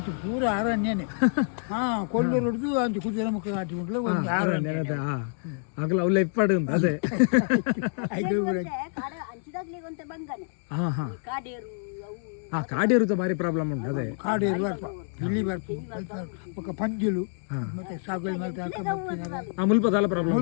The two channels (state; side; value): silent; right; digital silence